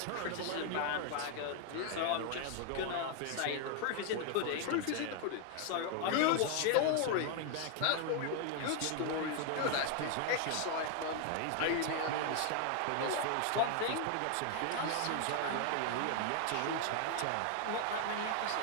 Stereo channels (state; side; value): different; both; correlation 0.00